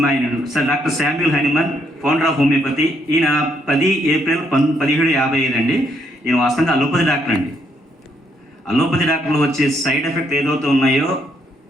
sir doctor Samuel Hahnemann, founder of homeopathy. ఈయన 10 ఏప్రిల్ 1755 అండి. ఈయన వాస్తవంగా అలోపతి డాక్టర్ అండి. అలోపతి డాక్టర్లు వచ్చే సైడ్ ఎఫెక్ట్ ఏదైతే ఉన్నాయో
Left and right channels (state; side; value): normal; both; correlation 0.73